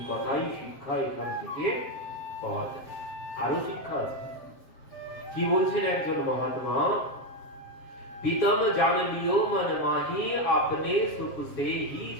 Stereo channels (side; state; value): right; late; 7.6 ms